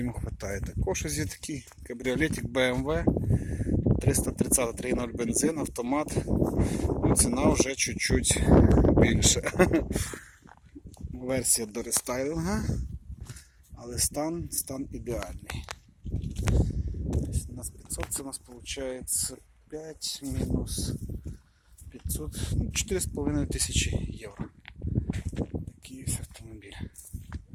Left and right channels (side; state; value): both; identical; correlation 1.00